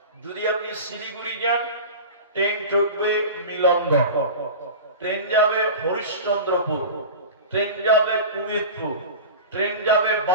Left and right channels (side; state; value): both; inverted; correlation -0.31